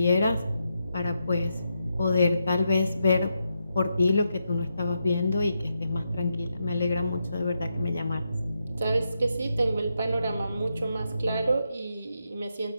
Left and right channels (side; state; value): both; inverted; correlation -0.84